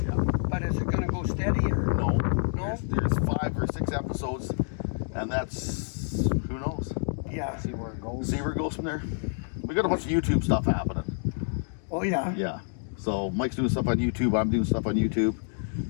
Yeah. But is it going to go steady or? No. No? There's 5 or 6 episodes, and that's, who knows? Yeah. See where it goes. See where it goes from there. We got a bunch of YouTube stuff happening. Oh yeah. Yeah. So Mike's doing stuff on YouTube. I'm doing stuff on YouTube.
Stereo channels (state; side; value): silent; right; digital silence